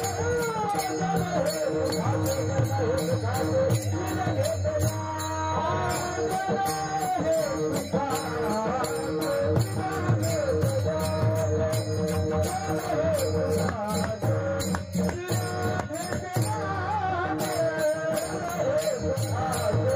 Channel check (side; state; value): both; identical; correlation 1.00